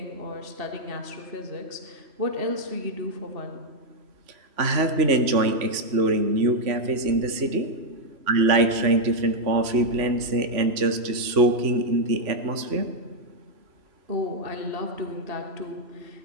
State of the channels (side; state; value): left; late; 3.0 ms